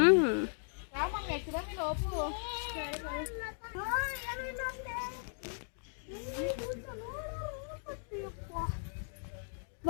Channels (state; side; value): silent; right; digital silence